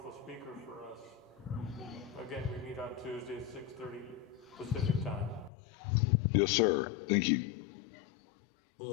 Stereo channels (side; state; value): right; drops out; at 5.5 s